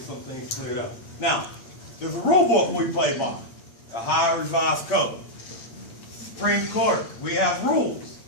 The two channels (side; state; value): right; late; 8.5 ms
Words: some things cleared up. Now, there's a rule book we play by, the Ohio Revised Code. Supreme Court, we have rules.